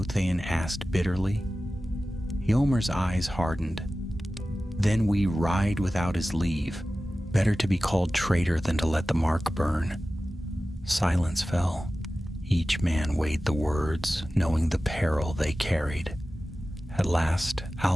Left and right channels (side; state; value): both; normal; correlation 0.95